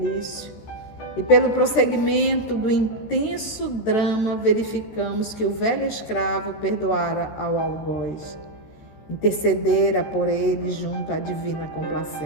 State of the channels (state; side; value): late; right; 14 ms